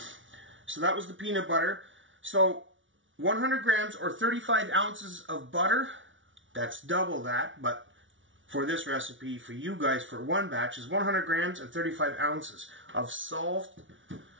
so that was the peanut butter. So 100 grams or 35 ounces of butter, that's double that, but for this recipe, for you guys, for one batch, is 100 grams and 35 ounces of salted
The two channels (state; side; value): late; left; 0.56 ms